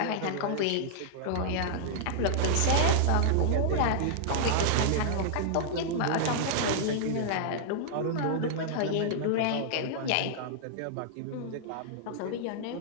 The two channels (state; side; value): different; both; correlation -0.01